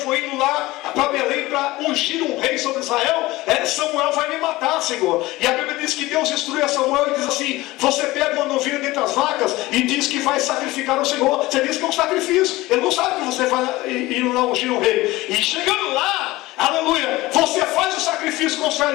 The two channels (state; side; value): quieter; right; 19.1 dB